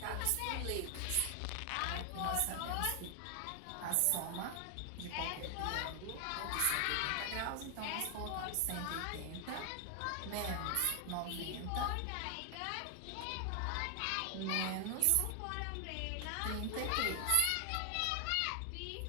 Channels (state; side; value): different; both; correlation 0.00